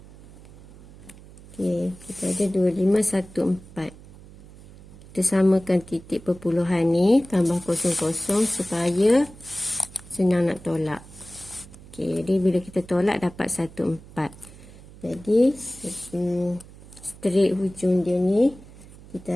Okey, kita ada 2514. Kita samakan titik perpuluhan ni tambah 00 supaya senang nak tolak. Okey, jadi bila kita tolak dapat 14. Jadi straight hujung dia ni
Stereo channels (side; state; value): right; noise; hum, 20 dB below the sound